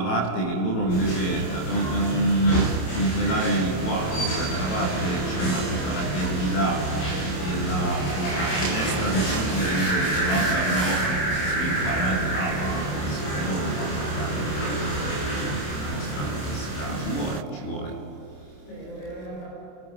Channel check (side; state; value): right; late; 27 ms